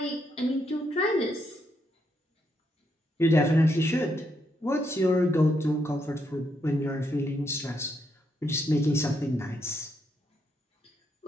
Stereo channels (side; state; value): both; normal; correlation 0.78